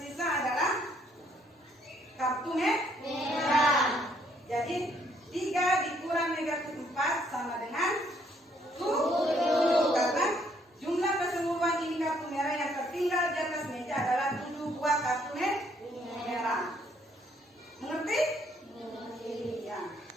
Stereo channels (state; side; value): normal; both; correlation 0.68